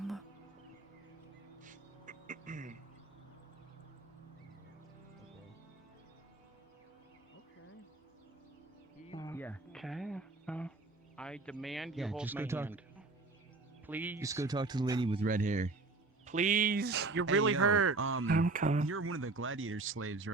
Yeah. Okay. I demand you hold my hand. Please. Just go talk to the lady with red hair. Please. You're Hey, really yo, hurt. I'm coming. You're one of the gladiator slaves,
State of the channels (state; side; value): quieter; left; 3.6 dB